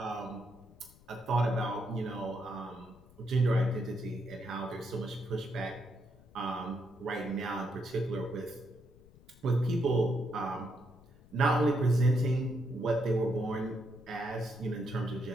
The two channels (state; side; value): noise; left; rumble, 24 dB below the sound